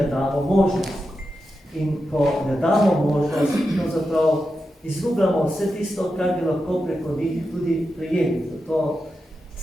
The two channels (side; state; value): both; normal; correlation 0.89